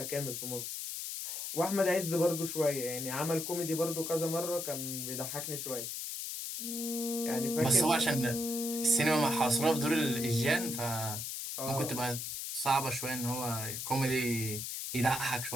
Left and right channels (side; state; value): left; noise; hiss, 5 dB below the sound